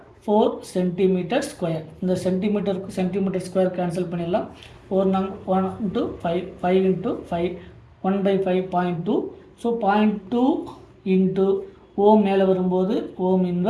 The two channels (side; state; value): both; identical; correlation 1.00